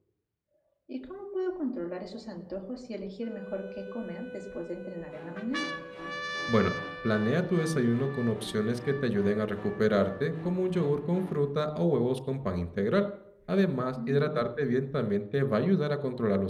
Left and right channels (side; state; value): both; identical; correlation 1.00